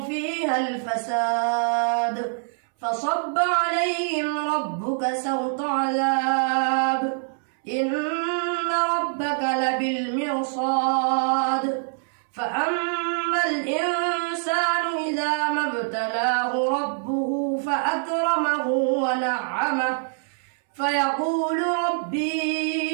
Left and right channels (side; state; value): left; silent; 62 dB below the other